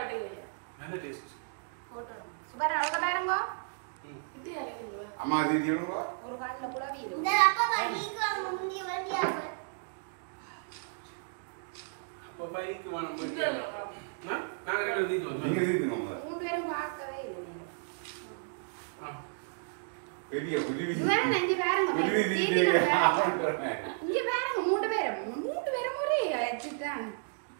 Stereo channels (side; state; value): left; silent; digital silence